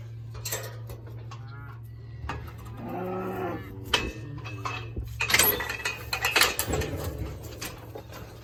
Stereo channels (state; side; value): identical; both; correlation 1.00